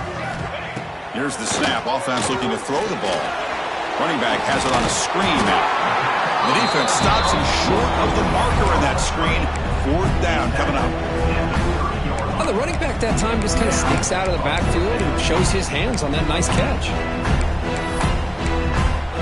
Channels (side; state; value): both; identical; correlation 1.00